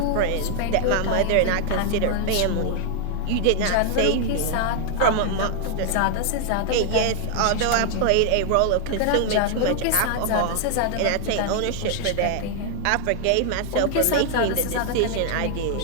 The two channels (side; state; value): both; different; correlation 0.00